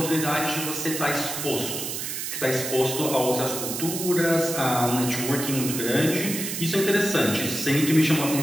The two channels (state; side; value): noise; right; hiss, 4 dB below the sound